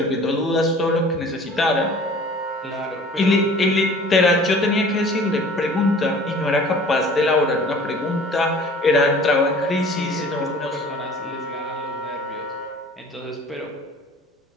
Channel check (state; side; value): normal; both; correlation 0.47